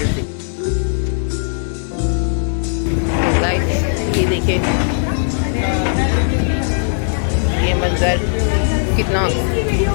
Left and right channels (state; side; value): silent; right; digital silence